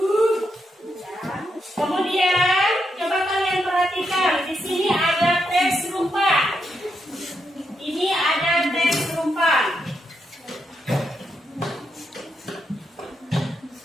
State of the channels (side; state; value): both; normal; correlation 0.82